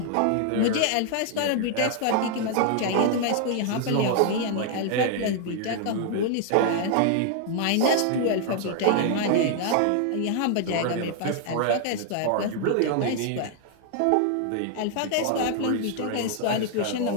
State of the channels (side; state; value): both; different; correlation 0.00